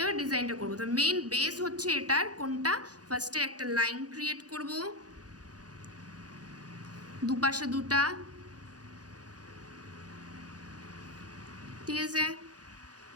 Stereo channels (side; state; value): left; late; 0.68 ms